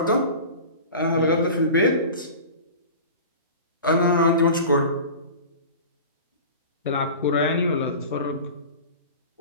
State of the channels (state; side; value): inverted; both; correlation -0.36